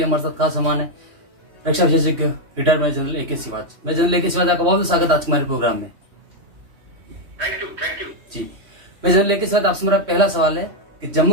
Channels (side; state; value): left; late; 3.1 ms